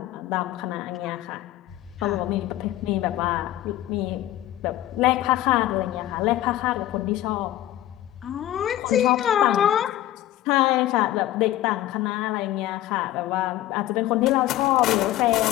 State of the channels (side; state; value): right; quieter; 14.3 dB